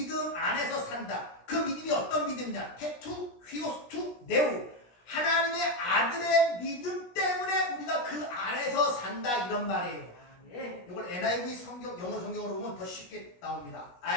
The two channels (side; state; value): right; late; 17 ms